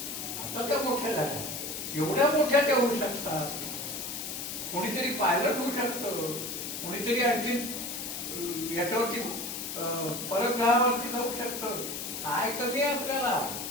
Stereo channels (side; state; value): left; noise; hiss, 6 dB below the sound